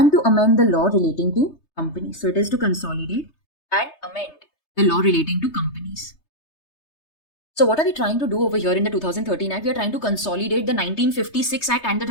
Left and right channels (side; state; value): right; late; 3.3 ms